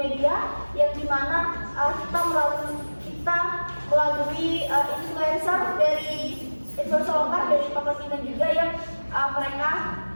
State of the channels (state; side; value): inverted; both; correlation -1.00